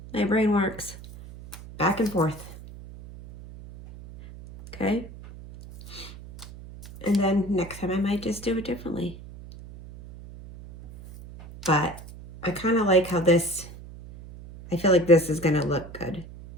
my brain works. back and forth. Okay. And then next time I might just do it differently. But I kind of like how this, I feel like this is going to look good,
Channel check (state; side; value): noise; right; hum, 16 dB below the sound